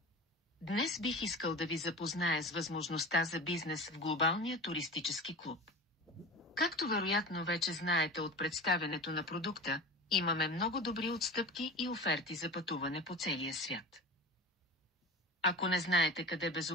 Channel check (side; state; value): both; normal; correlation 0.32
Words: Днес бих искал да ви запозная с възможността за бизнес в глобалния туристически клуб. Както вероятно вече знаете от представянето на продукта, имаме много добри отстъпки и оферти за пътуване по целия свят. Ако не знаете къде